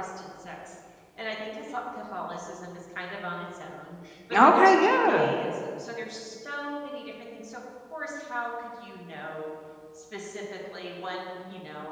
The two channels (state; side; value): identical; both; correlation 1.00